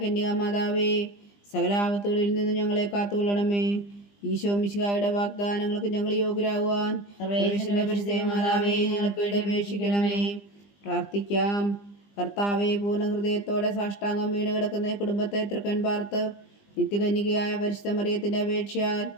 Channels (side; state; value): right; late; 20 ms